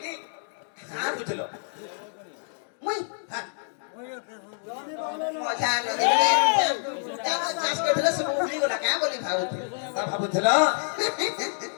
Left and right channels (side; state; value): right; silent; digital silence